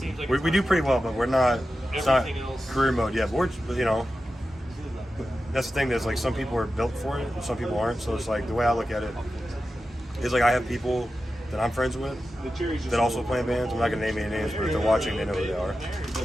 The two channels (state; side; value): normal; both; correlation 0.92